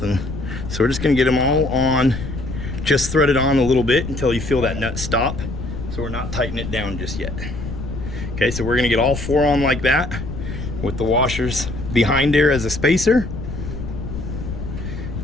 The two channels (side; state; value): left; noise; rumble, 7 dB below the sound